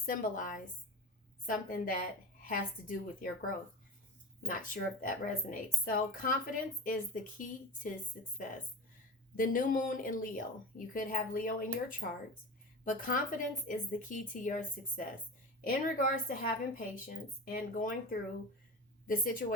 something that has to do with your growth. Not sure if that resonates. So, confidence is the key to success. The new moon in Leo. You could have Leo in your charts, but confidence is the key to your success in regards to having patience and going through the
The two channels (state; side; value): normal; both; correlation 0.30